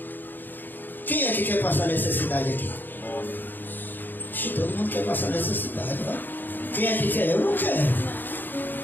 Quem é que quer passar necessidade aqui? Todo mundo quer passar necessidade, vai? Quem é que quer? Eu não quero.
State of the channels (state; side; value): late; right; 0.091 ms